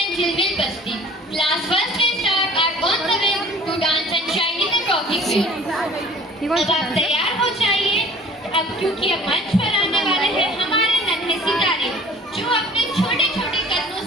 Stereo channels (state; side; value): normal; both; correlation 0.49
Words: and children basti. Class first and start are on the way to dance and shine in the rocking field. अब आप तैयार हो जाइए, अब क्योंकि अब मंच पर आने वाले हैं हमारे नन्हे सितारे, जो अपने छोटे छोटे कदमों